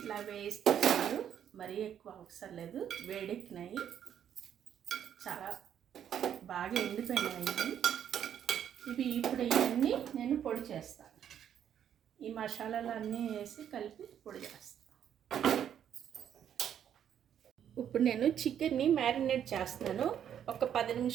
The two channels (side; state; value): left; quieter; 9.4 dB